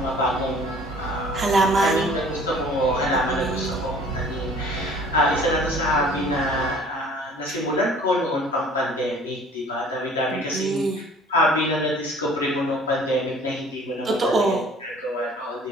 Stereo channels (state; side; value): normal; both; correlation 0.51